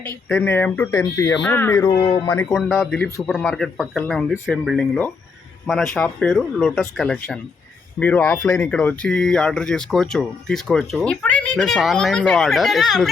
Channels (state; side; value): quieter; right; 4.8 dB